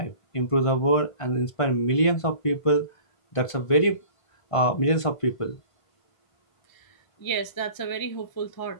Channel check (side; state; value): right; late; 1.5 ms